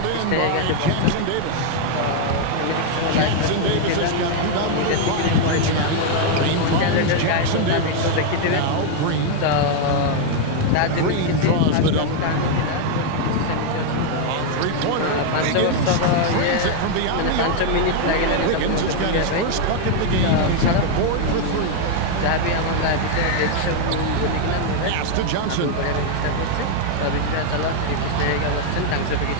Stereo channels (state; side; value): different; both; correlation 0.00